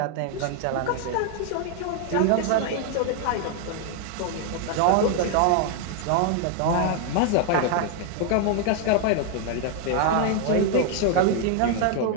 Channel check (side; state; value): both; different; correlation 0.00